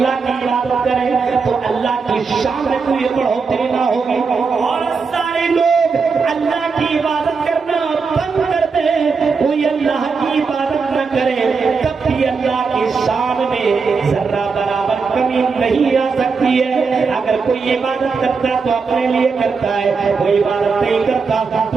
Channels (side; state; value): left; quieter; 5.0 dB